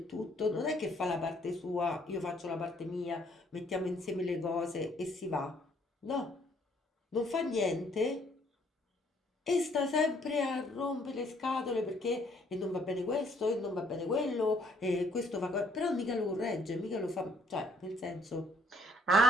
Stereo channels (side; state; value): both; normal; correlation 0.64